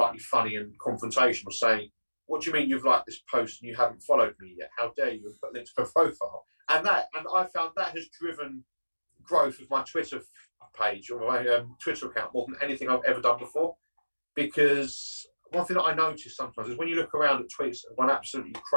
funny and confrontational, saying, what do you mean you've liked this post and you haven't followed me yet? How dare you have put links to a profile? And I found that has driven growth of my Twitter page or my Twitter account more than anything I've ever done before. Because one thing that I notice sometimes is when you look around at tweets that gone absolutely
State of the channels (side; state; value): both; inverted; correlation -1.00